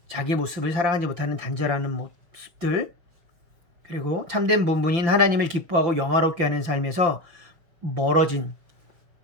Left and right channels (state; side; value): late; left; 5.9 ms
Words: 자기 모습을 사랑하지 못하는 단절하는 모습들, 그리고 참된 본분인 하나님을 기뻐하고 영화롭게 하는 삶에서 멀어진